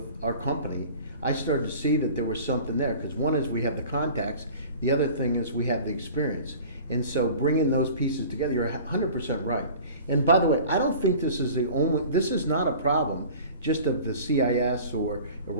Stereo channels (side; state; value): both; inverted; correlation -0.42